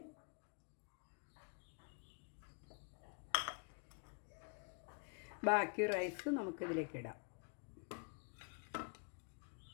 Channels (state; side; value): quieter; right; 36.6 dB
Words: ബാക്കി റൈസ് നമുക്കിതിലേക്ക് ഇടാം.